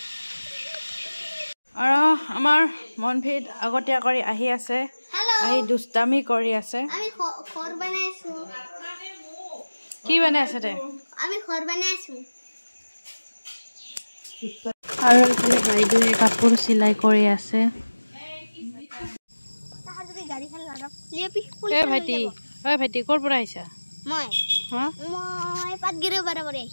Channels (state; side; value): inverted; both; correlation -1.00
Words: আৰু আমাৰ মনভিদ আগতীয়া কৰি আহি আছে আহি দুষ্টামি কৰি আছে আমি ঘৰ বনাই আছো কি বনাই আছে তে আমি ঘৰ বনাই আছো আৰু এফালে বাইদেৱে কাপোৰ চিলাই কৰি আছে ভাইটি ক'ৰ পৰা আহিছা মই পাটগিৰি পৰা